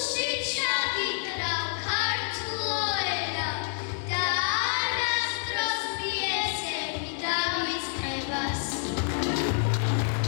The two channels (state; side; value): silent; right; 59 dB below the other